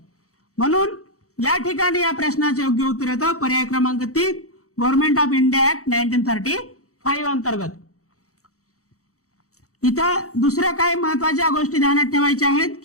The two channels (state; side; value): late; right; 0.65 ms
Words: म्हणून या ठिकाणी या प्रश्नाचे योग्य उत्तर येतं पर्याय क्रमांक 3, गव्हर्नमेंट ऑफ इंडिया ऍक्ट 1935 अंतर्गत. इथं दुसऱ्या काही महत्वाच्या गोष्टी ध्यानात ठेवायच्या आहेत